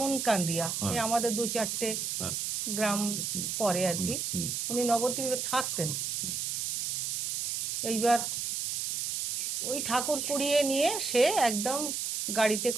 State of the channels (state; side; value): noise; right; hiss, 1 dB below the sound